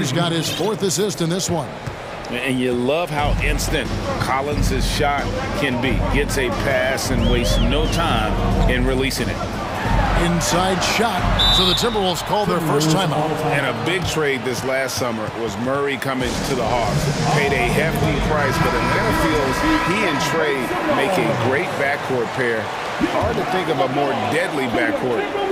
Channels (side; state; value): both; identical; correlation 1.00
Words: got his 4th assist in this one. And you love how instant Collins' shot can be. Gets a pass and wastes no time in releasing it. Inside shot. So the Timberwolves call their first timeout. And a big trade this last summer was Murray coming to the Hawks. Paid a hefty price, but Atlanta feels he and Trey make a great backcourt pair. Hard to think of a more deadly backcourt